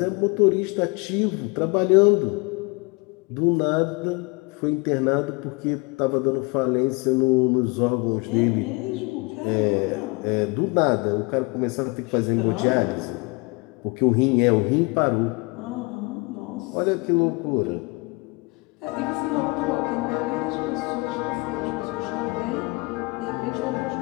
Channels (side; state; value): right; quieter; 28.2 dB